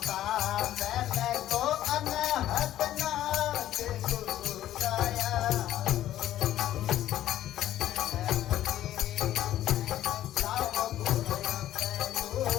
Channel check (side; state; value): right; quieter; 12.9 dB